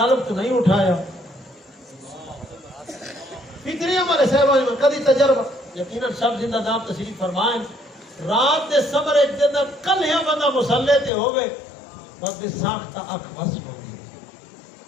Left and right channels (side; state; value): right; drops out; at 11.1 s